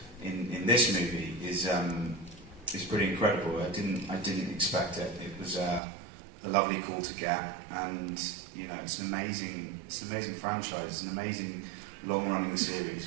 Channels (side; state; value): left; drops out; at 5.8 s